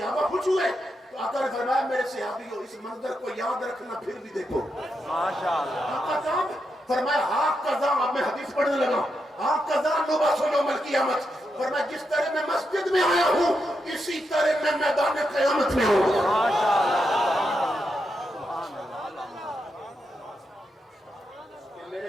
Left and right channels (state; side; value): normal; both; correlation 0.84